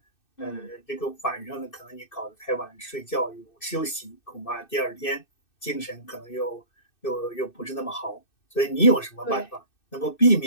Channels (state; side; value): late; right; 2.6 ms